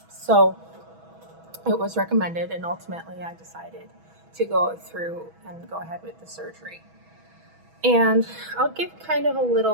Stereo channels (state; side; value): late; left; 6.2 ms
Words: So it was recommended, and ultimately I decided to go through and go ahead with the surgery. And I'll give kind of a